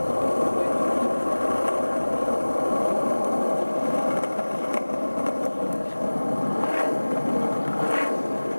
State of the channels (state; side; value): inverted; both; correlation -1.00